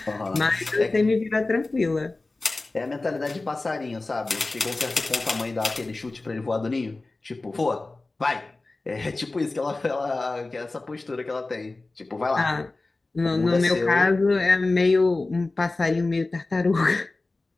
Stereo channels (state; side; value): quieter; right; 3.2 dB